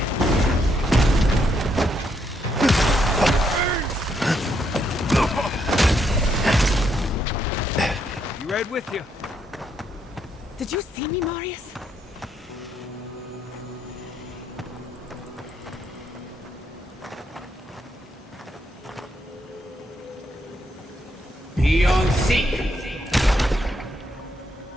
You right with you. Did you see me, Marius? Be on seek!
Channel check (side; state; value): both; normal; correlation 0.76